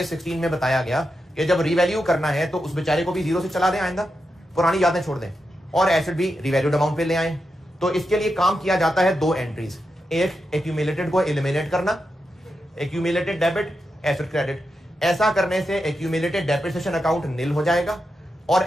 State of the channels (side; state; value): both; normal; correlation 0.87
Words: 16 में बताया गया कि जब रिवैल्यू करना है तो उस बेचारे को भी 0 से चला दें, आइंदा पुरानी यादें छोड़ दें, और एसेट भी रिवैल्यूड अमाउंट पे ले आए। तो इसके लिए काम किया जाता है 2 एंट्रीज, एक एक्यूमुलेटेड को एलिमिनेट करना, एक्यूमुलेटेड डेबिट, एसेट क्रेडिट। ऐसा करने से एक्यूमुलेटेड डेप्रिसिएशन अकाउंट नील हो जाएगा और